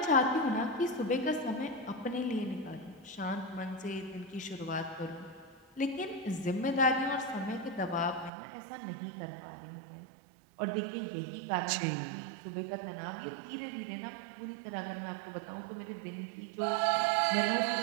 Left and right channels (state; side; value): drops out; left; at 8.3 s